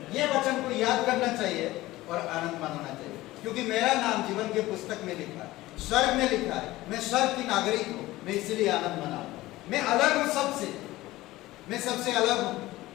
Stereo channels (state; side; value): quieter; right; 17.7 dB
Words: ये वचन को याद करना चाहिए और आनंद मनाना चाहिए, क्योंकि मेरा नाम जीवन के पुस्तक में लिखा है, स्वर्ग में लिखा है, मैं स्वर्ग की नागरिक हूँ, मैं इसीलिए आनंद मनाऊं। मैं अलग हूँ सबसे, मैं सबसे अलग हूँ,